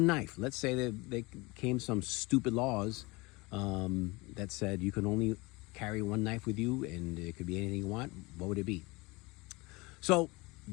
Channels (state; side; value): quieter; right; 24.5 dB